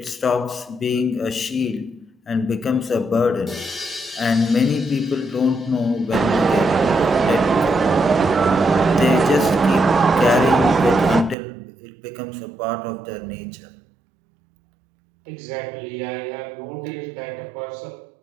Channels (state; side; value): drops out; left; at 11.4 s